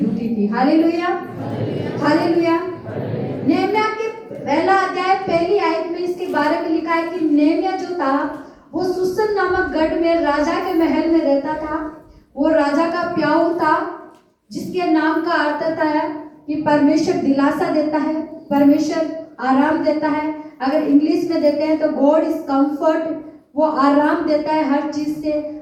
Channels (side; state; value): both; identical; correlation 1.00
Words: थी। Hallelujah, hallelujah. नेहमिया के पहला अध्याय पहली आयत में इसके बारे में है कि नेमिया जो था वो सुसन नामक गढ़ में राजा के महल में रहता था। वो राजा का प्याऊ था, जिसके नाम का अर्थ है कि परमेश्वर दिलासा देता है, परमेश्वर आराम देता है। अगर इंग्लिश में देते हैं तो गॉड इज कंफर्ट, वो आराम देता है हर चीज से,